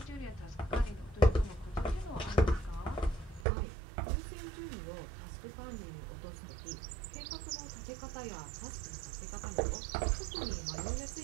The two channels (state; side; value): drops out; left; at 3.5 s